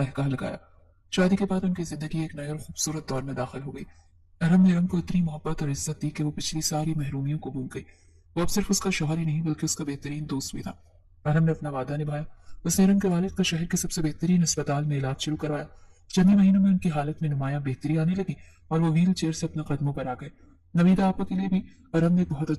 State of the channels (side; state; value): both; identical; correlation 1.00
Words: लगाया। शादी के बाद उनकी जिंदगी एक नए और खूबसूरत दौर में दाखिल हो गई। अरहम ने इरम को इतनी मोहब्बत और इज्जत दी कि वो पिछली सारी महरूमियों को भूल गई। वो अब सिर्फ उसका शौहर ही नहीं बल्कि उसका बेहतरीन दोस्त भी था। अरहम ने अपना वादा निभाया। उसने इरम के वालिद का शहर के सबसे बेहतरीन अस्पताल में इलाज शुरू करवाया। चंद ही महीनों में उनकी हालत में नुमाया बेहतरी आने लगी और वो व्हील चेयर से अपने कदमों पर आ गए। नवीदा आपा के लिए भी अरहम ने एक बहुत